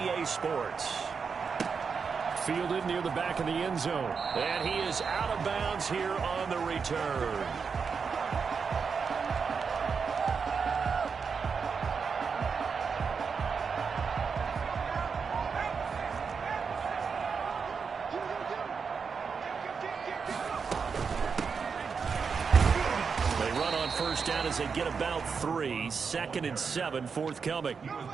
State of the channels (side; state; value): left; quieter; 5.7 dB